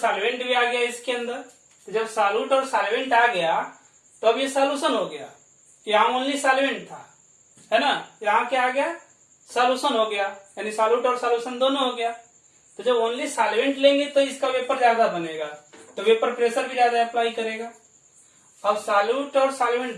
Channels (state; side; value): identical; both; correlation 1.00